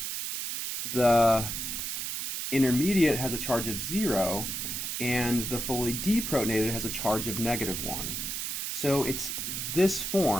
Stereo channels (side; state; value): right; noise; hiss, 3 dB below the sound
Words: The intermediate has a charge of 0, and the fully deprotonated has a charge of -1. So it's this